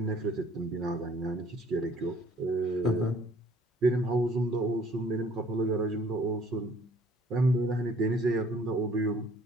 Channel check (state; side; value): normal; both; correlation 0.58